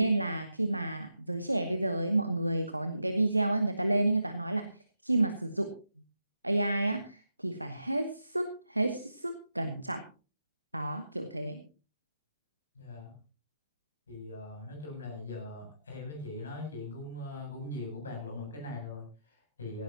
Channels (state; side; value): inverted; both; correlation -0.86